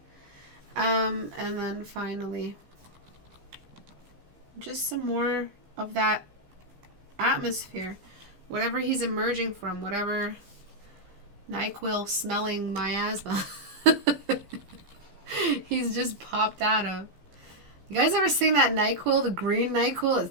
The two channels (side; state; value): left; late; 15 ms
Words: And then finally, just some more of that atmosphere. Whatever he's emerging from, whatever NyQuil smelling miasma he's just popped out of. You guys ever seen that NyQuil, the green NyQuil?